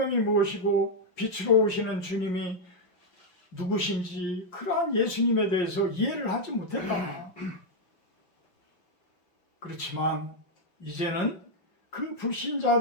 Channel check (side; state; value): right; late; 5.6 ms